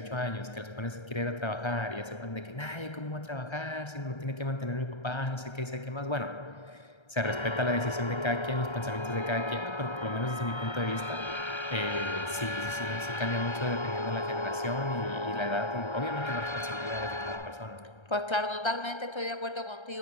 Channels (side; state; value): right; late; 1.3 ms